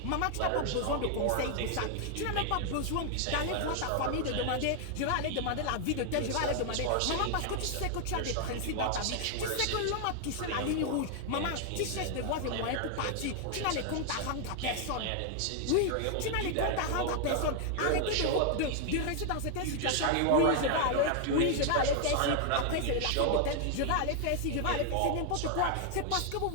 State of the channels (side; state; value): both; different; correlation 0.00